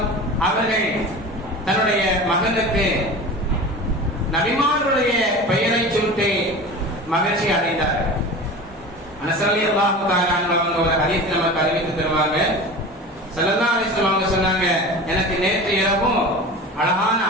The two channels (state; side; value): normal; both; correlation 0.34